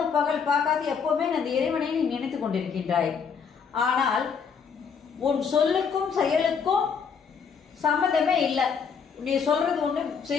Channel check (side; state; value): right; quieter; 6.3 dB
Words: பகல் பார்க்காது எப்பவுமே அந்த இறைவனை நீ நினைத்து கொண்டிருக்கின்றாய். ஆனால் உன் சொல்லுக்கும் செயலுக்கும் சம்மந்தமே இல்லை. நீ சொல்றது ஒன்று,